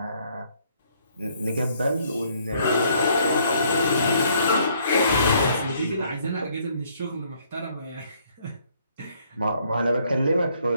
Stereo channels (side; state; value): both; inverted; correlation -0.66